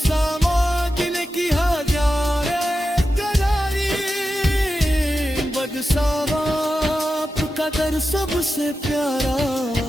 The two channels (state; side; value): normal; both; correlation 0.91